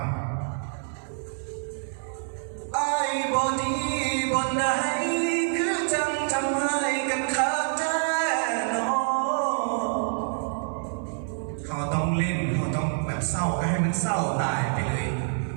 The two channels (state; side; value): silent; left; digital silence